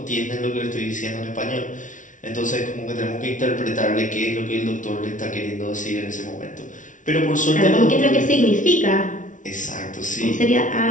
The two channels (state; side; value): late; right; 0.37 ms